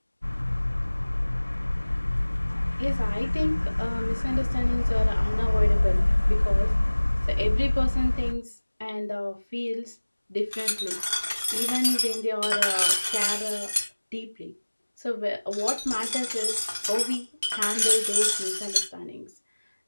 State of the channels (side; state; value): both; inverted; correlation -1.00